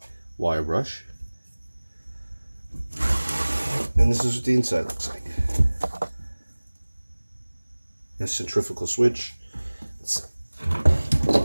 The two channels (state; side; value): inverted; both; correlation -1.00